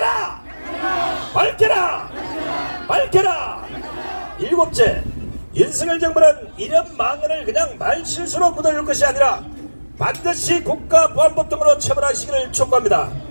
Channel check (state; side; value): inverted; both; correlation -1.00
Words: 밝혀라! 밝혀라! 일곱째, 윤석열 정부는 이런 망언을 그냥 말실수로 묻어줄 것이 아니라 반드시 국가보안법 등으로 처벌하시기를 촉구합니다.